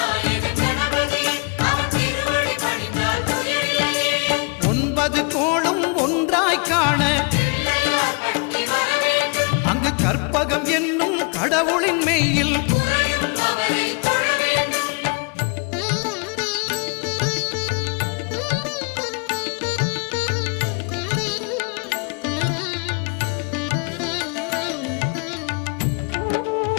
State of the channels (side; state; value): right; quieter; 34.3 dB